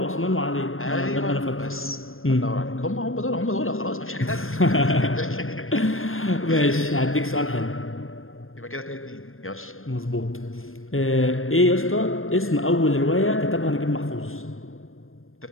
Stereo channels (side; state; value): right; late; 0.60 ms